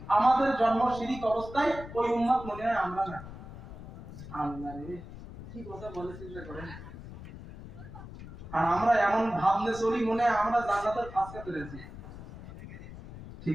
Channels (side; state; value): left; noise; rumble, 13 dB below the sound